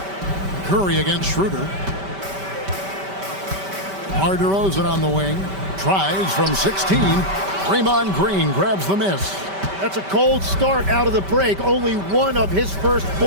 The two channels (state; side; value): late; left; 5.1 ms